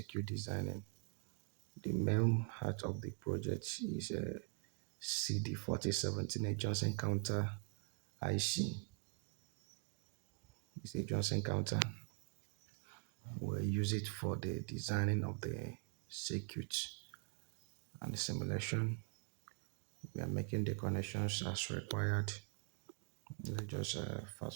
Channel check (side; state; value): left; quieter; 35.6 dB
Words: designing. The main heart of the project is CD4017, a Johnson counter IC. It's a Johnson counter. We'll use it for the designing of the circuit and the simulation. We are making the connections as required. Let's just